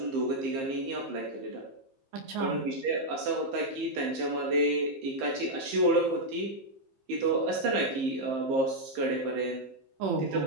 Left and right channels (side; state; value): left; late; 15 ms